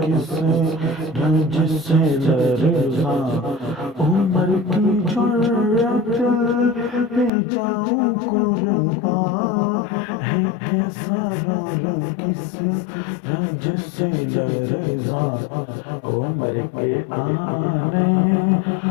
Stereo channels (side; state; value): right; drops out; at 7.3 s